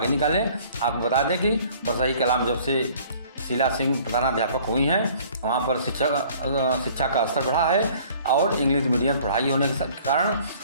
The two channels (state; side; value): inverted; both; correlation -0.53